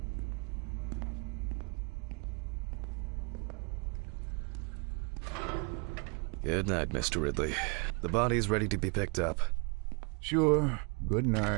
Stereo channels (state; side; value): quieter; left; 33.2 dB